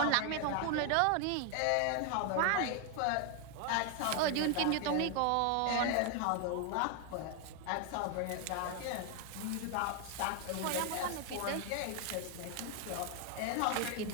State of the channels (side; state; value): both; different; correlation 0.01